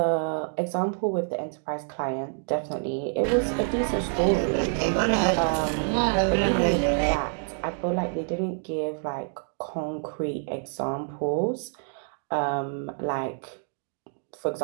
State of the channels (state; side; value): silent; left; 58 dB below the other